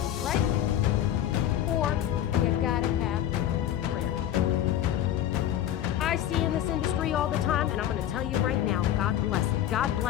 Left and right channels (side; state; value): right; quieter; 11.5 dB